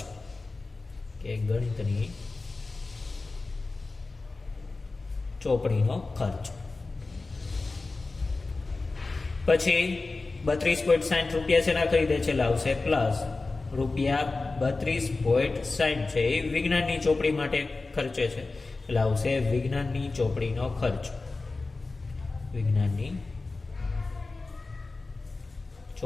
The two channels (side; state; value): right; quieter; 3.6 dB